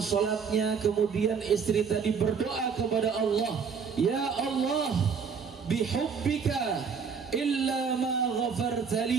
sholatnya. Kemudian istri tadi berdoa kepada Allah, "Ya Allah, bihubbika illa ma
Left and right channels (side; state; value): left; quieter; 6.1 dB